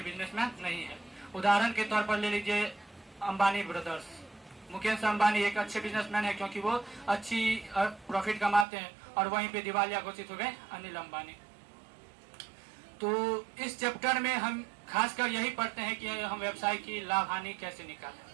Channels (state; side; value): drops out; left; at 8.7 s